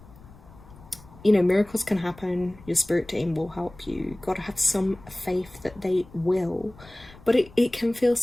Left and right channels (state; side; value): noise; left; rumble, 22 dB below the sound